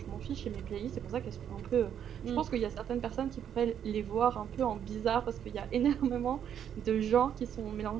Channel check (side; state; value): left; quieter; 9.2 dB